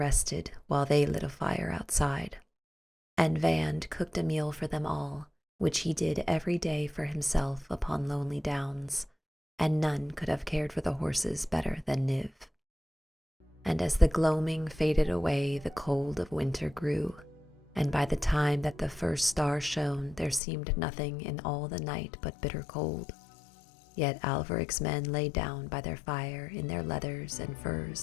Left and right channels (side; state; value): right; drops out; at 20.4 s